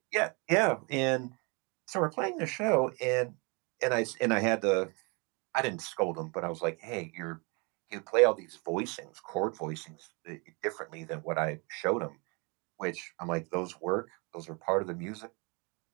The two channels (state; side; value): quieter; left; 31.2 dB